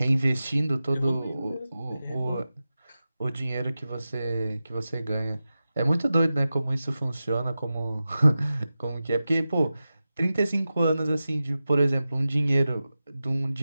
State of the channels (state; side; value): inverted; both; correlation -0.94